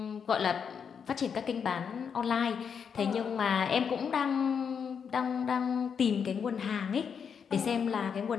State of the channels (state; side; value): quieter; right; 6.9 dB